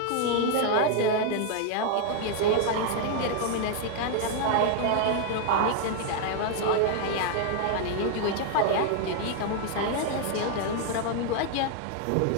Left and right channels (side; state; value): both; different; correlation 0.00